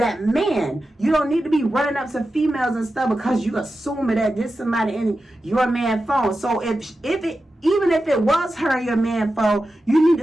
man. You don't need to be running up to females and stuff because you assuming that this somebody in your man phone. So even if it was her in your man phone, you need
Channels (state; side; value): normal; both; correlation 0.92